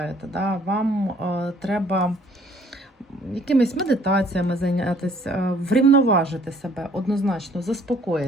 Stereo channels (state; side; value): normal; both; correlation 0.60